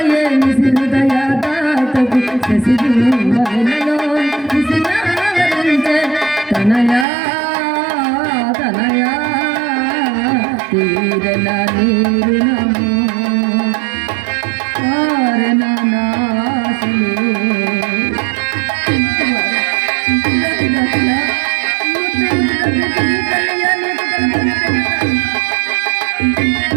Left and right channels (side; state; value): left; drops out; at 7.1 s